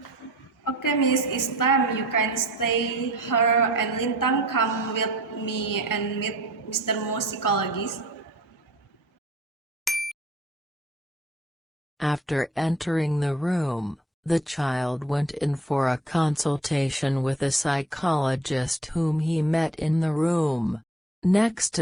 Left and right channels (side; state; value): both; normal; correlation 0.51